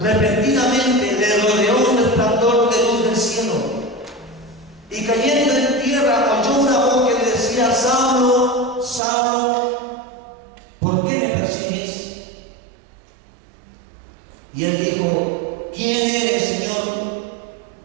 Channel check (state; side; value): drops out; left; at 9.0 s